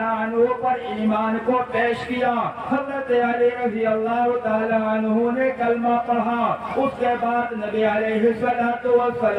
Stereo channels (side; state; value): both; identical; correlation 1.00